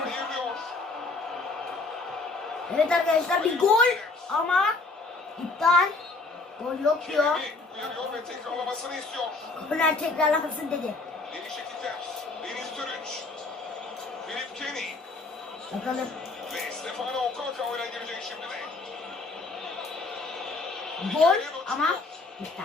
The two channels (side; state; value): right; quieter; 3.5 dB